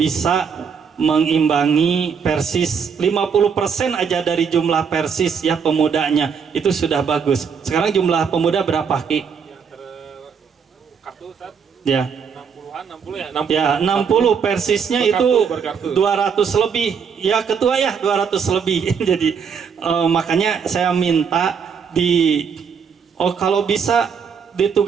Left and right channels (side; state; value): left; quieter; 6.5 dB